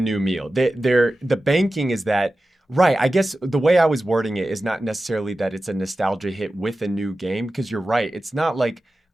meal. The banking is that. Right. I guess the way I was wording it is not necessarily that it's a nostalgia hit with a new game, because you're right. It's not like,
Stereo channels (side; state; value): both; normal; correlation 0.94